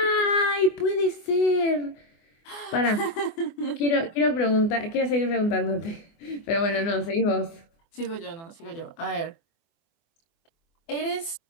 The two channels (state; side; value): late; right; 24 ms